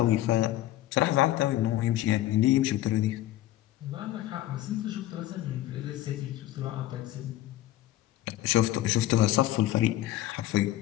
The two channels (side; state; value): right; quieter; 14.7 dB